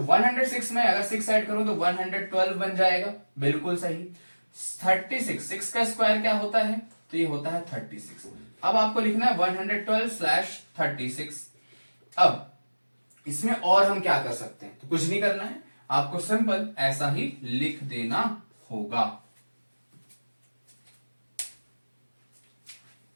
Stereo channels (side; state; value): both; inverted; correlation -1.00